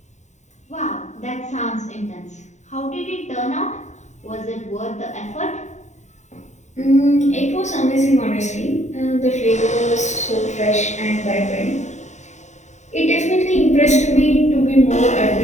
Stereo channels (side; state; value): right; late; 0.34 ms